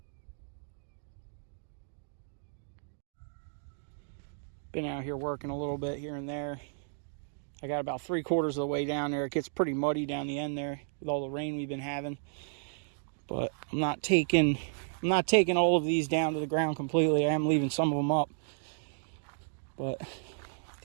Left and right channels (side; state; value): left; silent; digital silence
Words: Been out here working a little bit here and there. I got about 3/4 of the way down there. It gets pretty muddy down the end there with all the rain we've been having. But I'm not taking all of these down to the ground completely. I am leaving some of them up. But